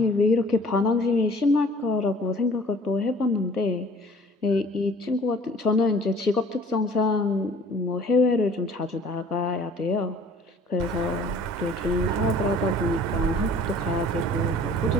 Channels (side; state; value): both; normal; correlation 0.51